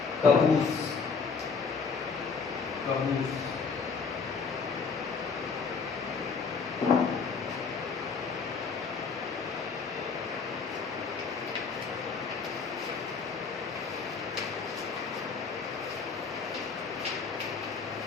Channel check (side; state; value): right; quieter; 5.2 dB